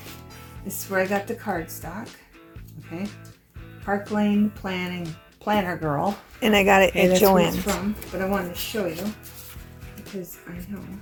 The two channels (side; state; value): both; identical; correlation 1.00